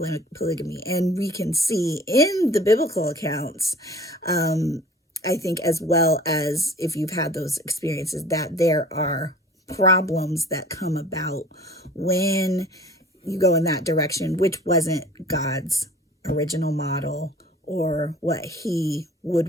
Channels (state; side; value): normal; both; correlation 0.47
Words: polygamy. And we can see in the biblical accounts, I think, as well as if you've had those experiences, that there are problems that come about when you go in that direction, which wasn't God's original model or what he would